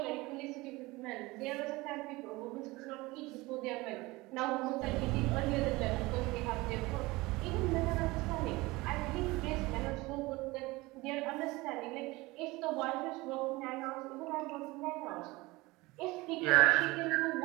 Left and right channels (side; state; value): left; quieter; 21.7 dB